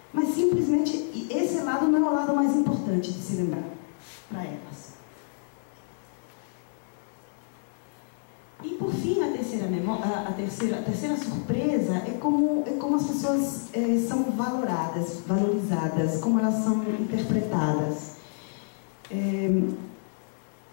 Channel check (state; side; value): silent; right; digital silence